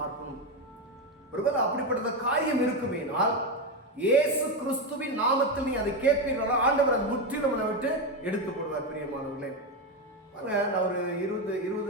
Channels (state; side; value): normal; both; correlation 0.11